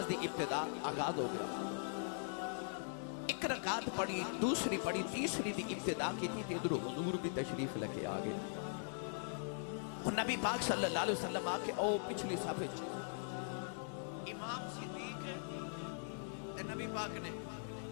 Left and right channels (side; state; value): right; silent; digital silence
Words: دی ابتدا آغاز ہو گیا. ایک رکعت پڑھی, دوسری پڑھی, تیسری دی ابتدا کی تھی تے ادھر حضور بھی تشریف لے کے آگے. اور نبی پاک صلی اللہ علیہ وسلم آکے او پچھلی صف وچ امام صدیق تے نبی پاک نے